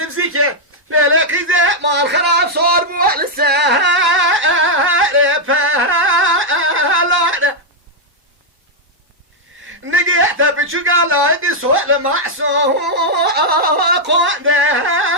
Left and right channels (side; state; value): both; normal; correlation -0.02